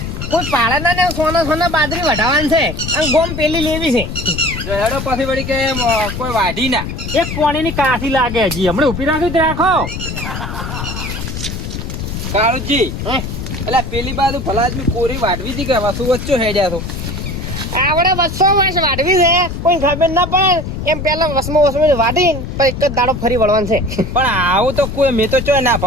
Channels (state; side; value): noise; left; rumble, 6 dB below the sound